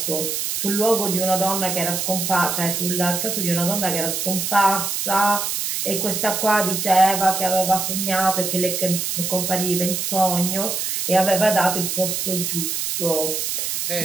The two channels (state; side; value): noise; right; hiss, 1 dB below the sound